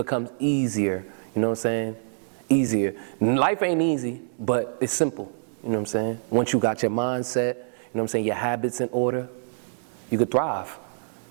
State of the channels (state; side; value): silent; left; digital silence